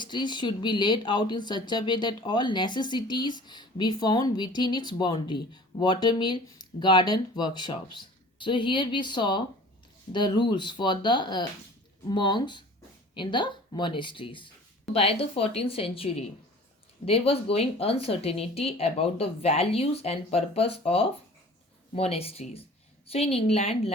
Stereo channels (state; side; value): normal; both; correlation 0.45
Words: should be laid out in such a way that all necessities be found within its boundary. Watermill, garden, workshops. So here we saw the rules for the monks in the monasteries. By the 14th century, there was going uncertainty about the values and purpose of monasteries. So in England,